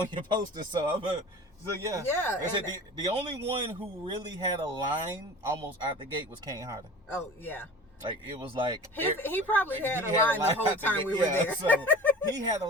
your poster. So yeah. Yeah. I said the only one who really had a line almost out the gate was Kane Hodder. Oh yeah. Like it was like he probably had a line the whole time we were there. So he had a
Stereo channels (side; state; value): both; normal; correlation 0.39